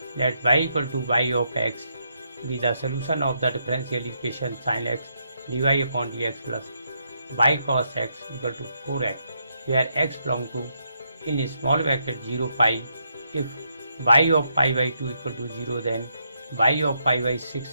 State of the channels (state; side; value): inverted; both; correlation -0.78